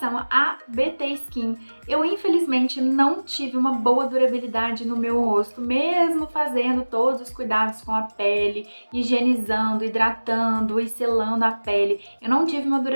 a BT Skin, eu infelizmente não tive uma boa durabilidade no meu rosto, mesmo fazendo todos os cuidados com a pele, higienizando, hidratando e selando a pele. Eu não tive uma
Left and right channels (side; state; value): both; inverted; correlation -1.00